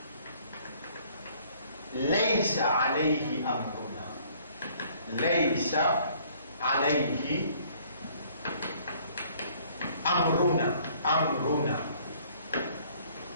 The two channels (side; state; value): both; inverted; correlation -0.59